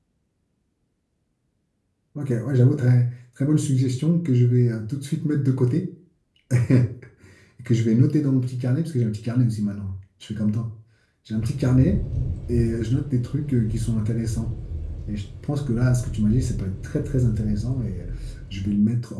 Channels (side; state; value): both; identical; correlation 1.00